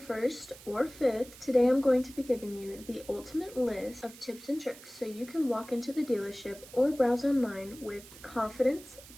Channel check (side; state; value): right; noise; hiss, 19 dB below the sound